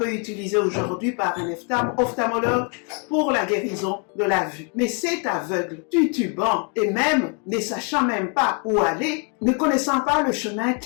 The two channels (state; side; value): quieter; right; 38.2 dB